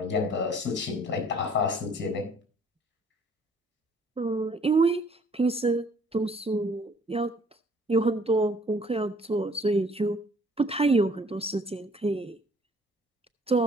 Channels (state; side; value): normal; both; correlation 0.58